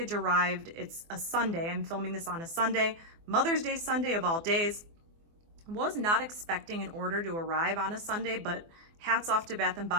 arrived. It's a Sunday. I'm filming this on a Sunday, Mother's Day Sunday of all days. Was not expecting an order to arrive on a Sunday, but hats off to Bath &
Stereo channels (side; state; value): left; late; 24 ms